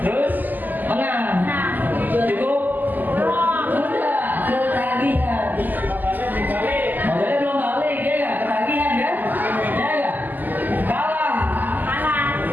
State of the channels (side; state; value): left; late; 0.085 ms